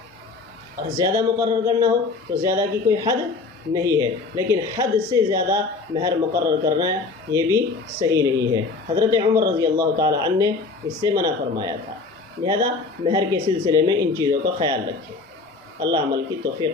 اور زیادہ مقرر کرنا ہو تو زیادہ کی کوئی حد نہیں ہے، لیکن حد سے زیادہ مہر مقرر کرنا یہ بھی صحیح نہیں ہے۔ حضرت عمر رضی اللہ تعالی عنہ نے اس سے منع فرمایا تھا۔ لہذا مہر کے سلسلے میں ان چیزوں کا خیال رکھیں۔ اللہ عمل کی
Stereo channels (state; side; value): quieter; right; 4.0 dB